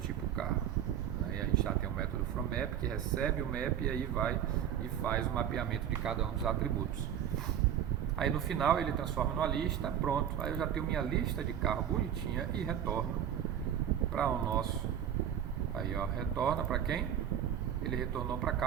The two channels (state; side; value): quieter; left; 9.7 dB